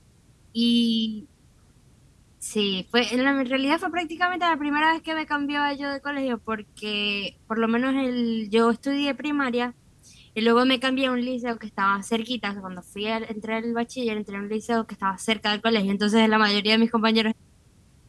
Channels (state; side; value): identical; both; correlation 1.00